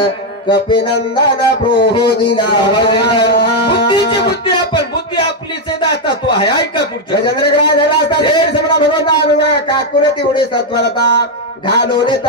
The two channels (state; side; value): normal; both; correlation 0.03